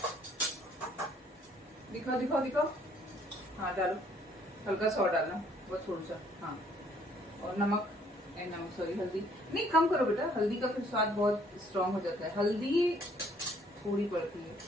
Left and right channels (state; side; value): normal; both; correlation 0.63